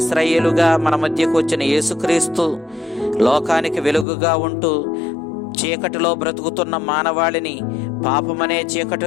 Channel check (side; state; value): right; drops out; at 4.0 s